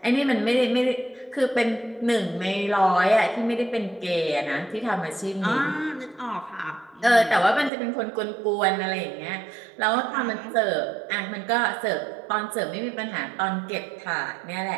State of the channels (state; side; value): drops out; left; at 7.7 s